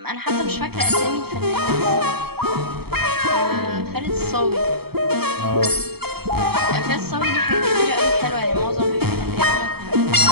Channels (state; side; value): late; left; 0.96 ms